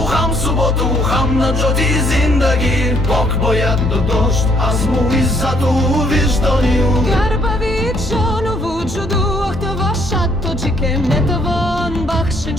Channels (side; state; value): both; normal; correlation 0.67